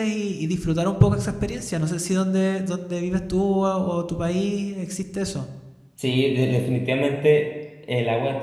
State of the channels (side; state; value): both; identical; correlation 1.00